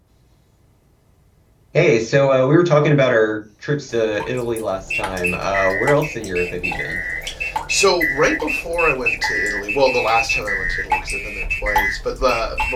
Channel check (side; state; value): both; identical; correlation 1.00